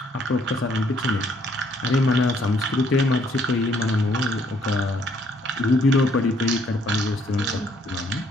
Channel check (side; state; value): both; normal; correlation 0.66